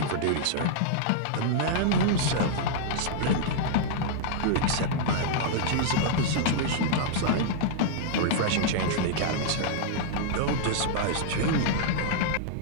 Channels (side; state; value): both; different; correlation -0.01